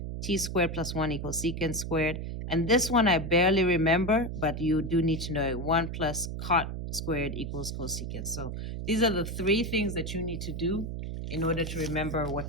t squared plus 1 equals secant squared. And this one I barely remember, but you do need to know it. 1 plus cot squared equals cosecant. So these are the three things that you need to do in order to remember what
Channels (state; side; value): noise; right; hum, 5 dB below the sound